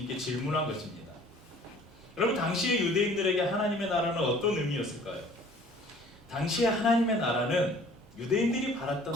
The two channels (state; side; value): normal; both; correlation 0.52